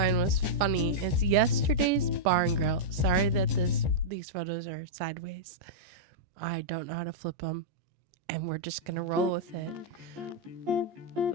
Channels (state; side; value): late; left; 14 ms